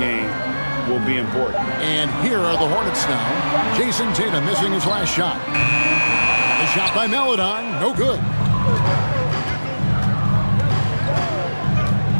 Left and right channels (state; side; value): inverted; both; correlation -1.00